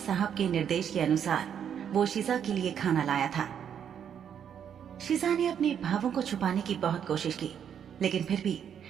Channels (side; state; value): left; quieter; 8.5 dB